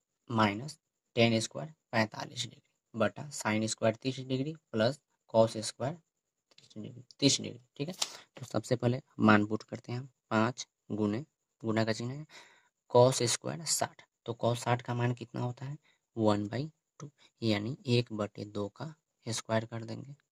10 square 45 degree बटा sine square 30 degree plus cos square 30 degree. ठीक है, तो सबसे पहले मान पुट करते हैं हम। 5 गुने, गुना का चिन्ह है, कॉस स्क्वायर 60, तो कॉस 60 का मान कितना होता है 1/2, यानी 1/2 का स्क्वायर कर देंगे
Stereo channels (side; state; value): both; identical; correlation 1.00